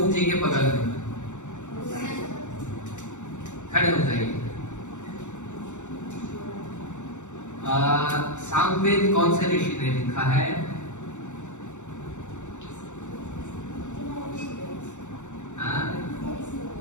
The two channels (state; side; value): late; right; 0.85 ms